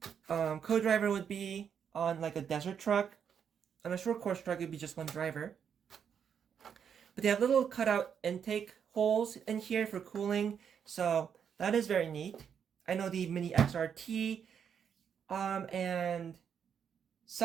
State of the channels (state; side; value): quieter; left; 7.7 dB